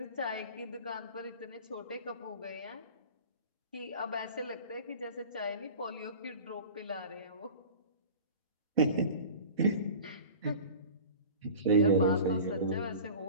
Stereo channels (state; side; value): inverted; both; correlation -0.39